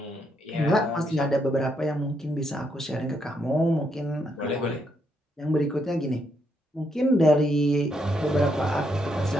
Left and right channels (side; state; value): both; normal; correlation 0.77